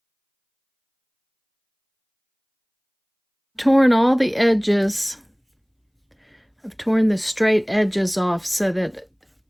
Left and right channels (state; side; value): identical; both; correlation 1.00